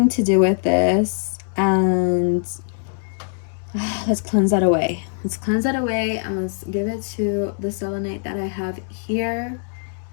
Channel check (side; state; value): right; silent; digital silence